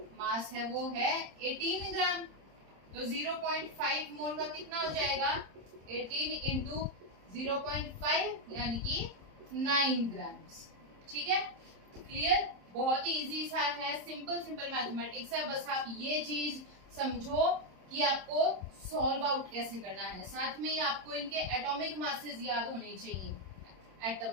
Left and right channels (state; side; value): late; left; 26 ms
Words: मास है वो है 18 ग्राम। तो 0.5 मोल का कितना हो जाएगा 18 इंटू 0.5 यानी कि 9 ग्राम्स। ठीक है, क्लियर? बहुत ही इजी सा है, सिंपल मैथमेटिक्स है। बस आप ये चीज समझो कि आपको सॉल्व आउट कैसे करना है। साथ में ही आपको इनके एटॉमिक मासेस याद होने चाहिए,